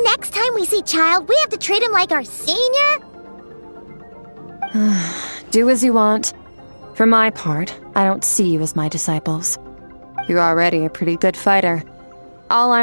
next time we see Child, we have to treat him like our senior? Do as you want. For my part, I don't see you as my disciples. You're already a pretty good fighter. All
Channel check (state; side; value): inverted; both; correlation -1.00